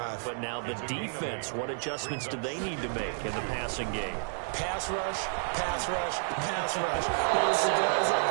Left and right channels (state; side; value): silent; left; digital silence